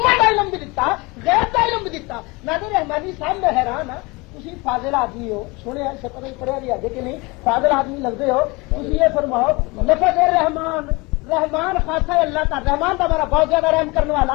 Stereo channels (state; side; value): quieter; right; 25.3 dB